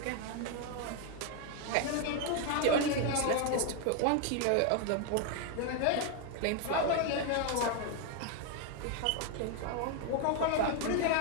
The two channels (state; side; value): different; both; correlation 0.01